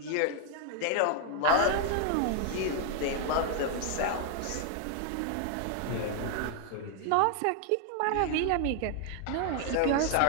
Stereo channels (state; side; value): different; both; correlation 0.00